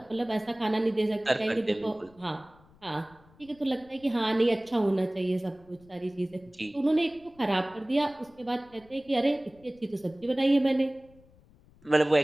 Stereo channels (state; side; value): noise; left; rumble, 28 dB below the sound